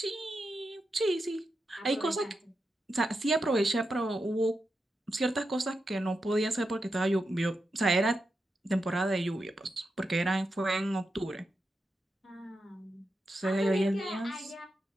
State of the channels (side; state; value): both; normal; correlation 0.88